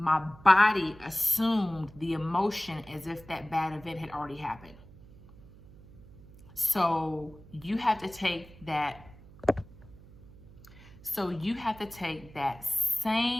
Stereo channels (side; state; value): right; noise; hum, 21 dB below the sound